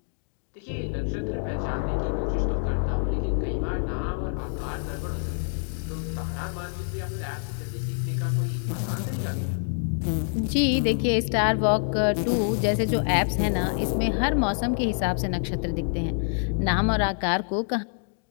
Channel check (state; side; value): silent; right; 61 dB below the other